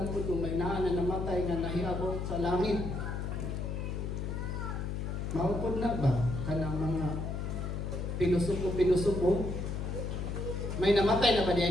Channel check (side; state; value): left; noise; hum, 3 dB below the sound